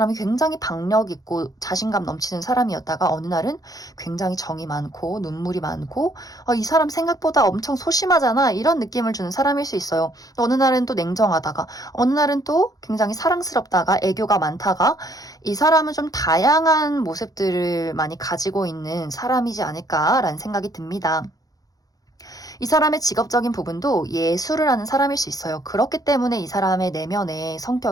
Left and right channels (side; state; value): right; late; 0.18 ms